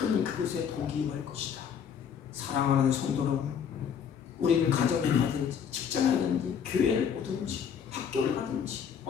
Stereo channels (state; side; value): quieter; right; 7.7 dB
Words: 그곳에 복이 임할 것이다. 사랑하는 성도 여러분, 우리는 가정에 가든지 직장에 가든지 교회를 오든지 학교를 가든지